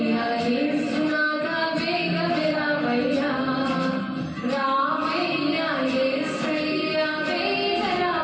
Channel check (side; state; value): both; identical; correlation 1.00